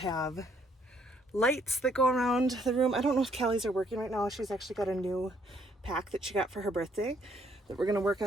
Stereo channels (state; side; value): normal; both; correlation 0.67